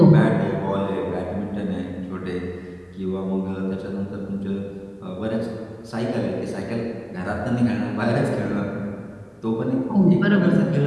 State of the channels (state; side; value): identical; both; correlation 1.00